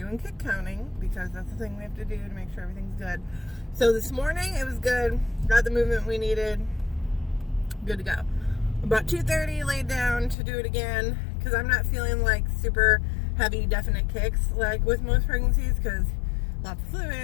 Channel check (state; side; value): drops out; right; at 10.4 s